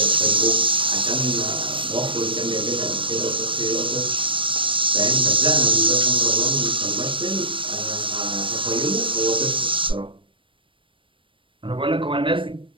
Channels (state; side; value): late; left; 0.25 ms